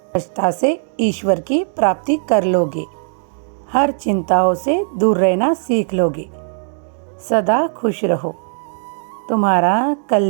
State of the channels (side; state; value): left; silent; digital silence